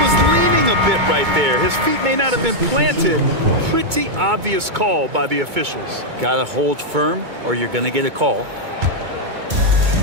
was leaning a bit right there. His feet may not have been planted. Pretty obvious call by the officials. Got to hold firm or you're going to get a call.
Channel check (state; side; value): late; left; 2.2 ms